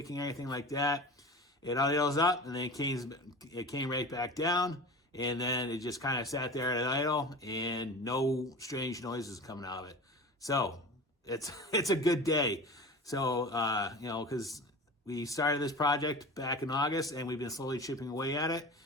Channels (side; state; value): both; normal; correlation 0.34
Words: anything like that. It idles up, and then it came right back down. And then it just kind of sat there at an idle, and no strange noises coming out of it. So it's a good day. So because we started this project back in August, and we've been slowly chipping away at it,